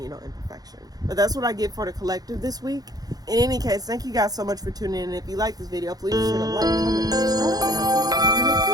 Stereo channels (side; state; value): left; late; 0.19 ms